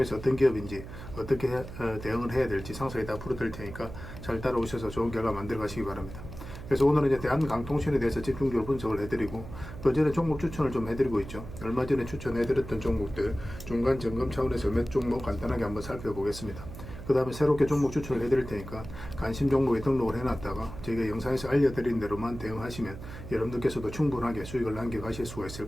어떤 기업인지 어떻게 대응을 해야 될지 상세히 다 풀어드릴 테니까 잘 따라오셔서 좋은 결과 만들어 가시기 바랍니다. 그래서 오늘은 이제 대한강통신에 대해서 집중적으로 분석을 해드리고 그전에 종목 추천을 좀 해드리고 있죠. 얼마 전에 추천해드렸던 종목들 중간 점검 차원에서 몇 종목 간단하게 한번 살펴보겠습니다. 그 다음에 새롭게 종목 추천을 해드릴 테니까 관심 종목에 등록을 해놨다가 저희가 영상에서 알려드린 대로만 대응하시면 여러분들께서도 충분하게 수익을 남겨가실 수가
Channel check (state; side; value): noise; right; hum, 12 dB below the sound